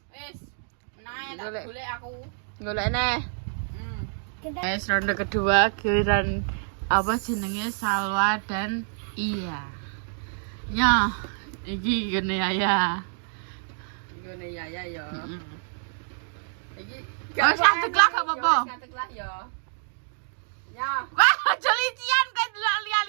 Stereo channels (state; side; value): silent; left; digital silence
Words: Wis, nah Golek. tak golek aku. golek neh. Kita Wes ronde kedua giliran apa jenenge Salwa dan Iya. Ya, iki gene ya. Gone ya yo. Iki Oh, satu kelas gak apa-apa. Satu kelas yo. Ya. Wah, aja lician kowe delok